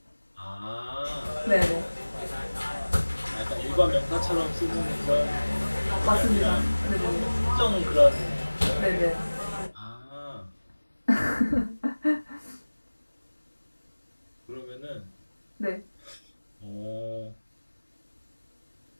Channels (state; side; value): inverted; both; correlation -1.00